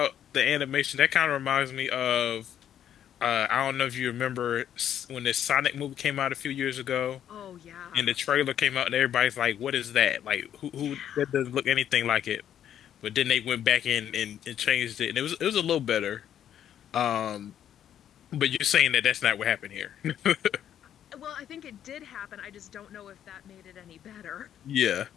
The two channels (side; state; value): right; quieter; 10.1 dB